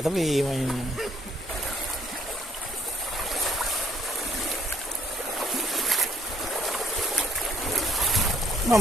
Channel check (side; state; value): both; normal; correlation 0.64